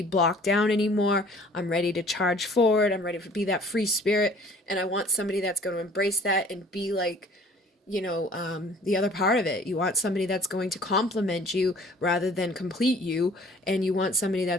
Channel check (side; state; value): both; normal; correlation 0.52